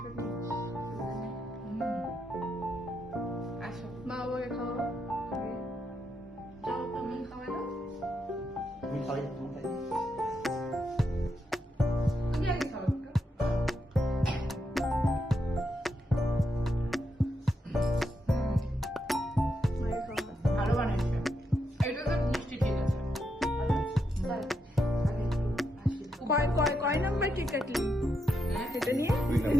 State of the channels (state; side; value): normal; both; correlation 0.82